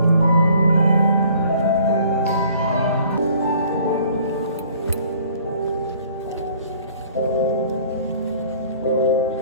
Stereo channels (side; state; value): both; inverted; correlation -0.55